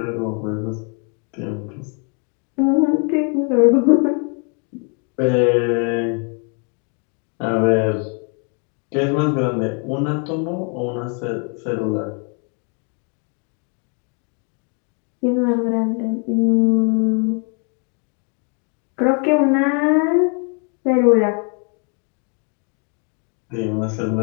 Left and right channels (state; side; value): quieter; right; 38.9 dB